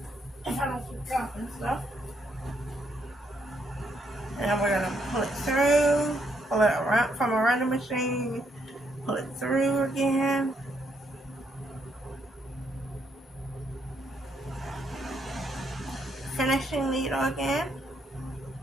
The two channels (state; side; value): normal; both; correlation 0.75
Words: If I don't keep dropping stuff. And we're gonna pull it through, pull it around from around the machine, pull it through again. Finishing needle again.